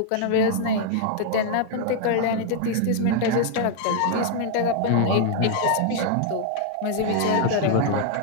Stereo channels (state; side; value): different; both; correlation -0.01